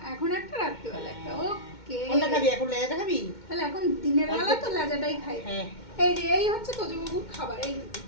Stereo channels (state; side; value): late; right; 2.1 ms